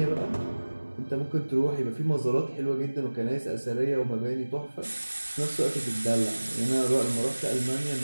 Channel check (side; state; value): both; inverted; correlation -1.00